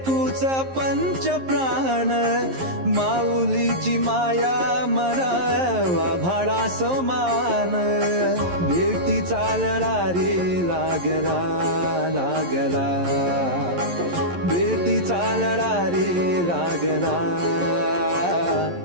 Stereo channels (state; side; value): late; left; 11 ms